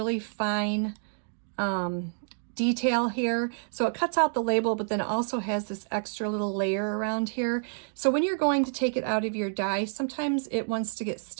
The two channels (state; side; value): silent; left; digital silence